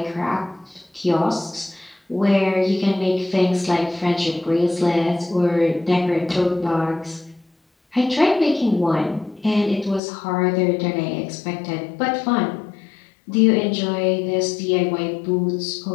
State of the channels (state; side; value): drops out; right; at 10.0 s